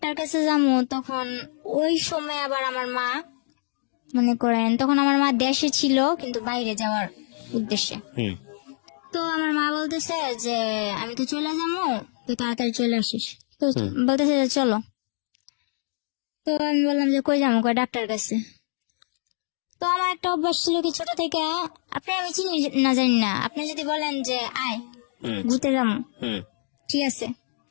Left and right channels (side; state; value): right; silent; digital silence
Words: কাছে যাবো। তখন ওই সময় আবার আমার মা মনে করেন, তখন আমার মা দেশে ছিল কিন্তু বাইরে যাওয়ার উদ্দেশ্যে। হুম তো আমার মা বলতেছে যে আমি তো চলে যাবো, তুই তাড়াতাড়ি চলে আসিস। তো বলতেছে যে চলো। তো আমি বললাম যে কই যাবো? কই ডাক্তার কাছে। তো আমার একটা অভ্যাস ছিল কি ছোট থেকে, আপনি আমি চিনি না জানি না, আপনি যদি বলেন যে আয় হুম ঘুরতে যাবো, হুম ঠিক আছে